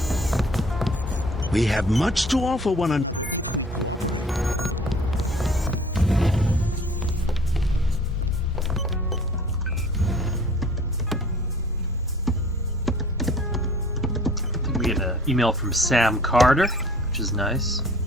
We have much to offer one another. We get an email from Sam Carter, which is nice.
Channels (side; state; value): both; normal; correlation 0.51